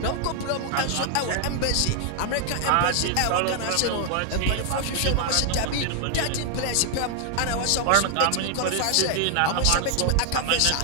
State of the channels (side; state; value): both; different; correlation 0.00